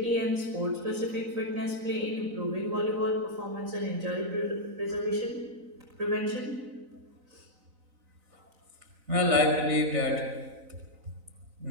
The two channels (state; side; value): late; left; 4.0 ms